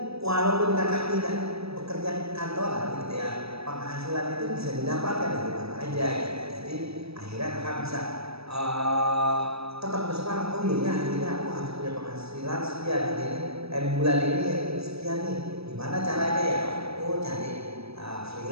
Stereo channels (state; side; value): late; left; 0.78 ms